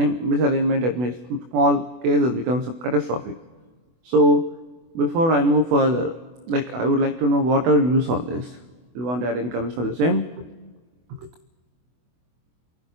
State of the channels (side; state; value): left; late; 24 ms